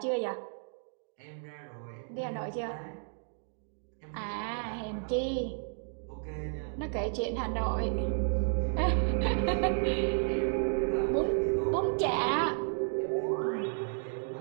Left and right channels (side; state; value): left; silent; 56 dB below the other